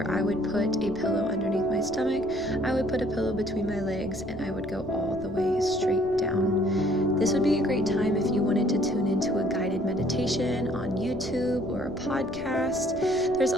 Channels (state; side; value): noise; right; rumble, 18 dB below the sound